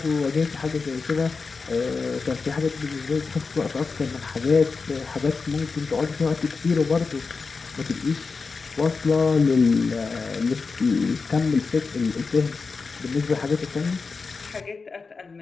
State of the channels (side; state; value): right; quieter; 4.5 dB